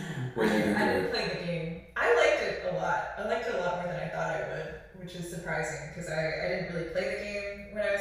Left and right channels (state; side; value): identical; both; correlation 1.00